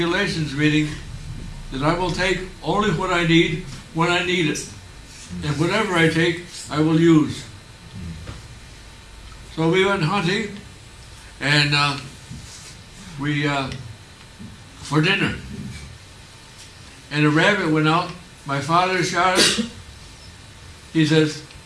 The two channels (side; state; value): both; identical; correlation 1.00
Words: meaning that I will take only what I need when I need it, and whatever I take, I will use. So we went hunting, and for dinner. And a rabbit went out. My father shot it. He says,